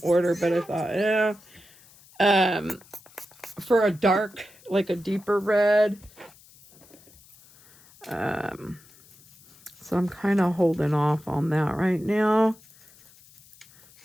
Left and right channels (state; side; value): noise; left; hiss, 26 dB below the sound